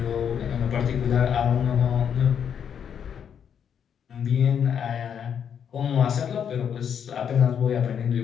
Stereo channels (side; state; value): right; quieter; 8.0 dB